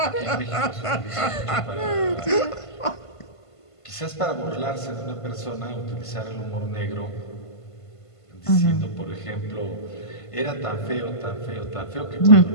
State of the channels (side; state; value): right; late; 1.5 ms